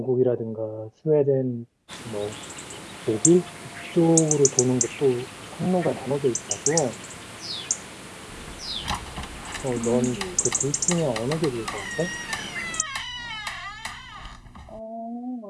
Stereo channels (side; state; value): both; identical; correlation 1.00